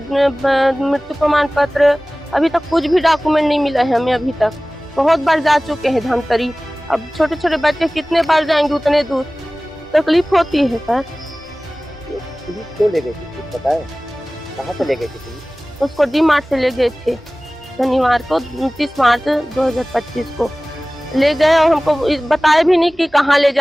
मृत्यु प्रमाण पत्र, अभी तक कुछ भी डॉक्यूमेंट नहीं मिला है हमें। अभी तक बहुत बार जा चुके हैं धमतरी, अब छोटे छोटे बच्चे कितने बार जाएंगे उतने दूर, तकलीफ होती है सर। क्यों ले गए थे पता है? कहाँ से ले गए थे? उसको डीमार्ट से ले गए थे शनिवार को, 29 मार्च 2025 को ले गए, और हमको बताया भी नहीं कि कहाँ ले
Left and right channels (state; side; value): normal; both; correlation 0.98